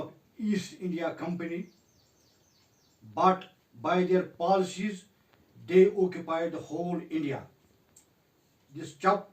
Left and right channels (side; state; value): both; identical; correlation 1.00